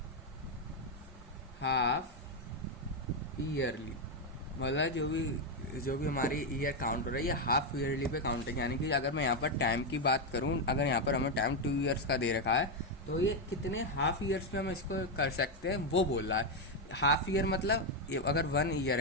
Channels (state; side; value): normal; both; correlation 0.04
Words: half yearly, मतलब जो भी हमारी ईयर काउंट हो रही है ये हाफ ईयरली पे काउंट है। यानी कि अगर मैं यहाँ पर टाइम की बात करूँ, अगर यहाँ पर हमें टाइम 2 ईयर्स का दे रखा है तो ये कितने हाफ ईयर्स में हम इसको कर सकते हैं वो बोल रहा है। हाफ ईयर मतलब अगर 1 ईयर